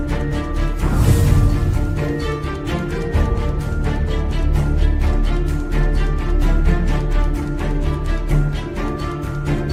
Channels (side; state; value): both; identical; correlation 1.00